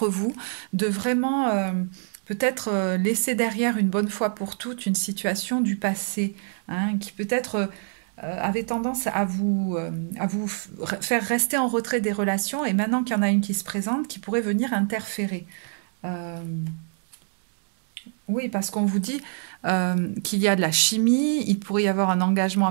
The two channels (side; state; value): left; silent; 60 dB below the other